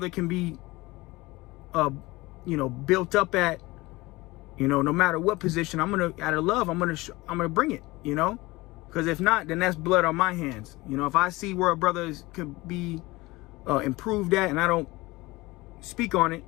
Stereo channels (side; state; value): right; quieter; 21.1 dB